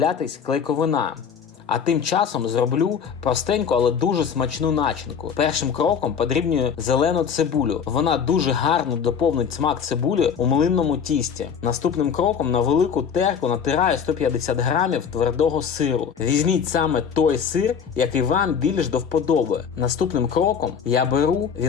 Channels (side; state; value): right; quieter; 7.0 dB